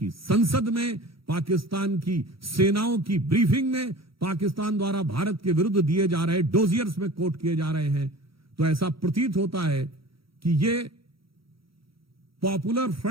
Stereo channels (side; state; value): left; late; 0.75 ms